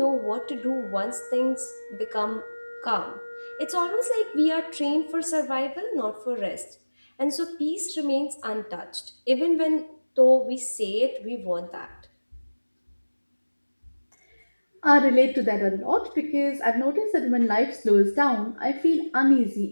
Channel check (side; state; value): both; inverted; correlation -1.00